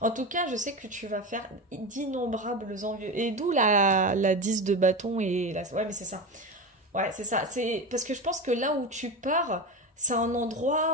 tout cas, je sais que tu vas faire d'innombrables envieux. Et d'où la 10 de bâton et la... Ouais, mais c'est ça. Ouais, c'est ça. C'est... Parce que je pense que là où tu pars, c'est un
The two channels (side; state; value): both; normal; correlation 0.22